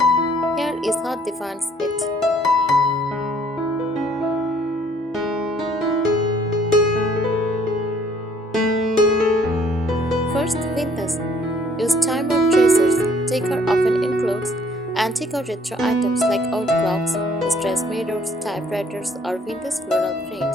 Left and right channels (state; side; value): normal; both; correlation 0.60